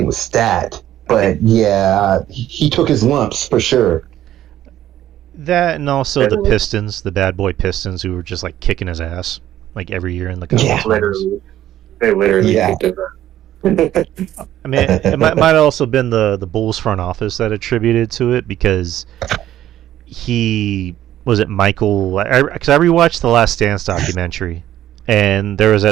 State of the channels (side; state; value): left; quieter; 12.6 dB